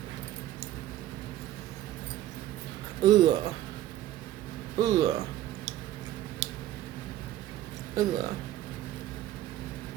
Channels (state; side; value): quieter; left; 13.6 dB